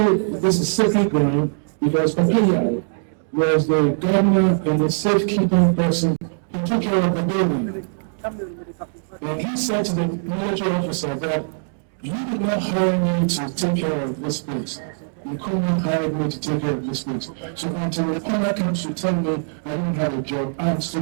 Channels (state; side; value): silent; left; digital silence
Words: this is sacred ground because Papaya was the governor and the safekeeping person who took care of the building. And he said to the military officer that you did not hire me to take care of this place. Nkrumah hired me to take care of this place. So until the owner comes to tell me I don't have a job, I'm